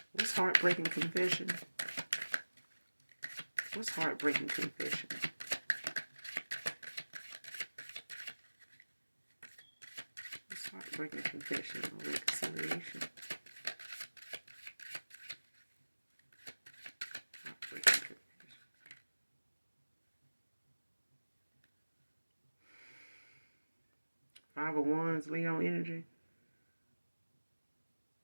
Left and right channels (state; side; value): inverted; both; correlation -1.00